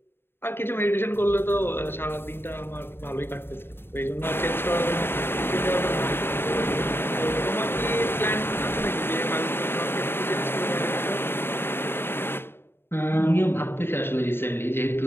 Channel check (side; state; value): right; late; 0.11 ms